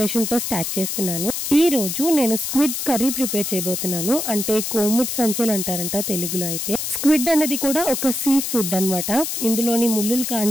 తో స్టార్ట్ చేస్తున్నాను. ఈ రోజు నేను స్క్విడ్ కర్రీ ప్రిపేర్ చేయబోతున్నాను. అంటే కోముట్ సంచెలు అంటారంట తెలుగులో. అయితే స్క్విడ్ అనేది కూడా ఒక సీ ఫుడ్ అన్నమాట. ఇందులోని ముళ్ళులు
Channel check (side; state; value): left; noise; hiss, 3 dB below the sound